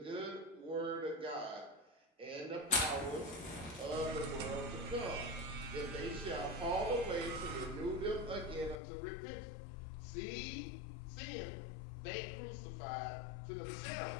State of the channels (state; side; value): drops out; right; at 8.8 s